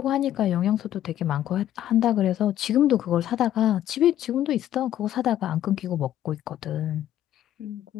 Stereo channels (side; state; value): right; quieter; 12.0 dB